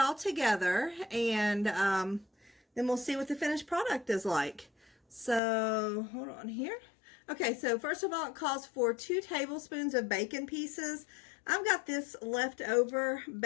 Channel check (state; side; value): drops out; right; at 5.4 s